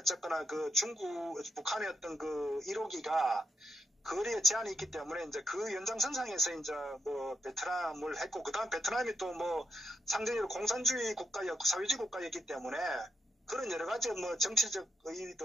그 북한의 어떤 그 1호기가 거리에 제한이 있기 때문에 이제 그 연장선상에서 이제 뭐 베트남을 했고 그다음 베트남이 또 뭐 상대적으로 공산주의 국가였고 사회주의 국가였기 때문에 그런 여러 가지 뭐 정치적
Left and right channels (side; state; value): both; normal; correlation 0.81